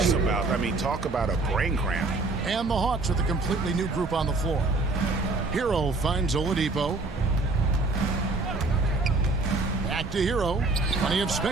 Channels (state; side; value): quieter; left; 3.4 dB